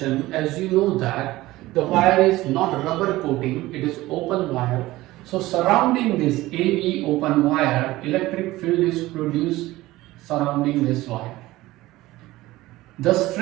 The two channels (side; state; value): left; quieter; 17.8 dB